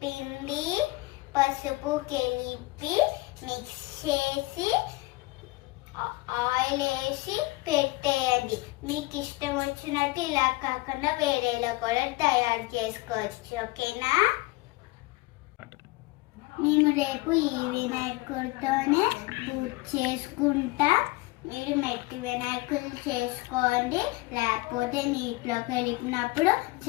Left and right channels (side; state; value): right; quieter; 22.0 dB